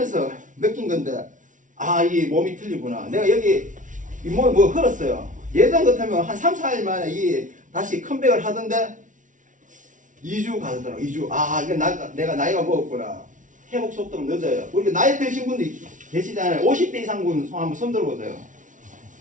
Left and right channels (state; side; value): late; left; 0.37 ms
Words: 느낀 건데 이 몸이 틀리구나. 내가 여기 이 몸이 뭐 흘렀어요. 예전 같으면 한 3, 4일 만에 이 다시 컴백을 하던데 2주 가더라고. 2주. 이거 내가 나이가 먹었구나. 회복 속도가 늦어요. 우리 나이 드신 분들 계시잖아요. 50대 이상 분 한번 손 들어보세요.